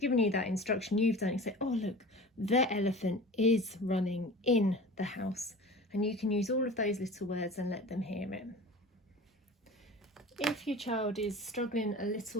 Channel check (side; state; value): both; normal; correlation 0.38